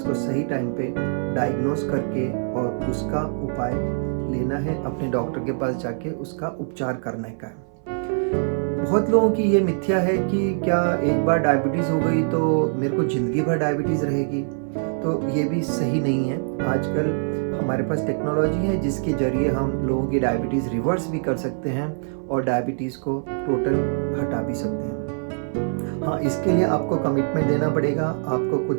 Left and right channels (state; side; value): silent; left; 58 dB below the other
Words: सही टाइम पे डायग्नोस करके और उसका उपाय लेना है, अपने डॉक्टर के पास जाके उसका उपचार करने का है। बहुत लोगों की ये मिथ्या है कि क्या एक बार डायबिटीज़ हो गई तो मेरे को ज़िंदगी भर डायबिटीज़ रहेगी, तो ये भी सही नहीं है। आजकल हमारे पास टेक्नोलॉजी है जिसके ज़रिए हम लोगों की डायबिटीज़ रिवर्स भी कर सकते हैं और डायबिटीज़ को टोटल हटा भी सकते हैं। हाँ, इसके लिए आपको कमिटमेंट देना पड़ेगा, आपको